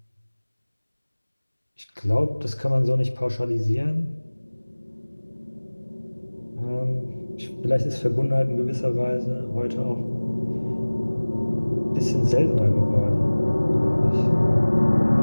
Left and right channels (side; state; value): both; inverted; correlation -1.00